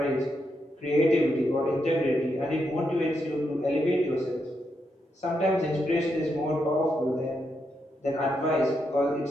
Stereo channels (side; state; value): both; normal; correlation 0.82